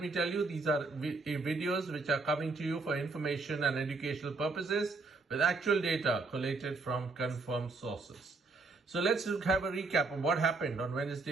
me tell you, these are videos which are coming to you for information and educational purposes with actual data collated from confirmed sources. So let's have a recap of what happened on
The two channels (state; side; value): quieter; left; 3.8 dB